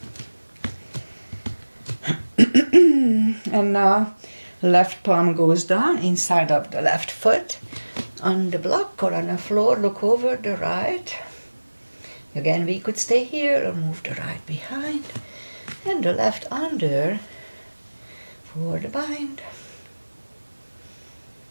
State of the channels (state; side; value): inverted; both; correlation -1.00